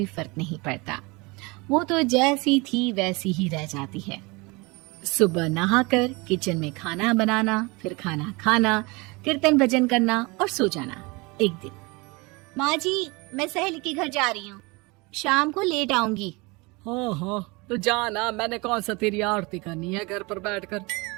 फर्क नहीं पड़ता, वो तो जैसी थी वैसी ही रह जाती है। सुबह नहाकर किचन में खाना बनाना, फिर खाना खाना, कीर्तन भजन करना और सो जाना। एक दिन, माँ जी मैं सहेली के घर जा रही हूँ, शाम को लेट आऊंगी। हाँ हाँ तो जाना, मैंने कौन सा तेरी आरती करनी है घर पर बैठकर।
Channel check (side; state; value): left; quieter; 26.1 dB